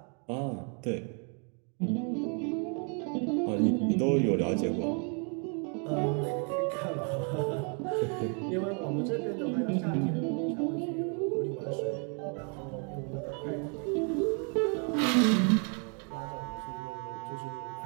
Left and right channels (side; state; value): left; quieter; 39.2 dB